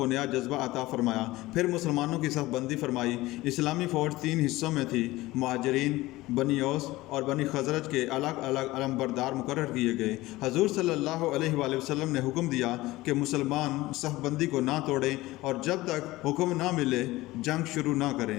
نیا جذبہ عطا فرمایا۔ پھر مسلمانوں کی صف بندی فرمائی۔ اسلامی فوج 3 حصوں میں تھی۔ مہاجرین، بنی اوس اور بنی خزرج کے الگ الگ علم بردار مقرر کیے گئے۔ حضور صلی اللہ علیہ وآلہ وسلم نے حکم دیا کہ مسلمان صف بندی کو نہ توڑیں اور جب تک حکم نہ ملے جنگ شروع نہ کریں۔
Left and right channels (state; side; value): quieter; right; 18.7 dB